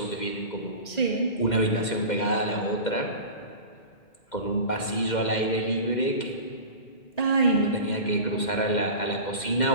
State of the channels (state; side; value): late; right; 2.1 ms